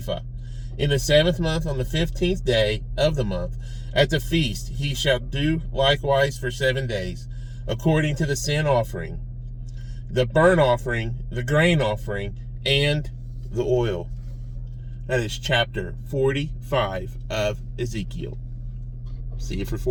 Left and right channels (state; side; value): identical; both; correlation 1.00